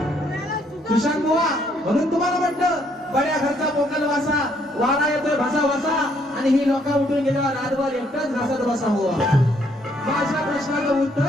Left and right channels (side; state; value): both; normal; correlation 0.69